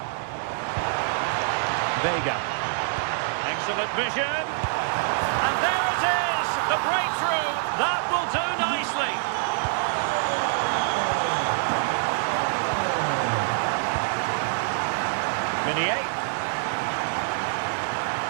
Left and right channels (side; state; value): left; silent; digital silence